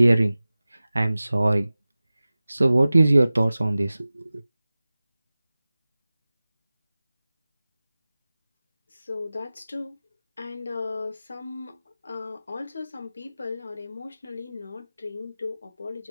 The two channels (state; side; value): inverted; both; correlation -0.97